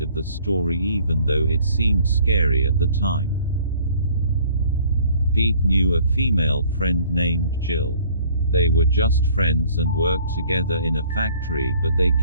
of the story even though it seemed scary at the time. Pete knew a female friend named Jill. They were just friends and worked together in a factory, but they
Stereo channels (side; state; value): both; inverted; correlation -0.56